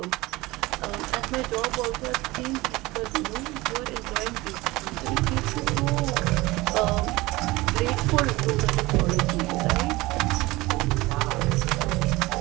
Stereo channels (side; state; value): left; quieter; 20.8 dB